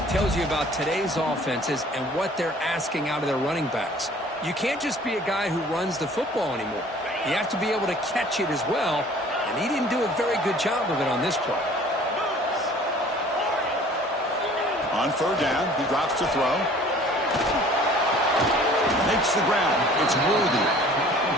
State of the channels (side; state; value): both; normal; correlation 0.51